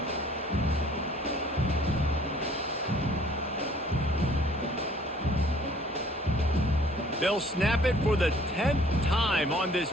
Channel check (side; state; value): both; normal; correlation 0.56